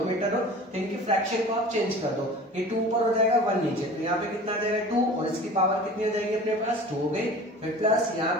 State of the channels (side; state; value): both; normal; correlation 0.40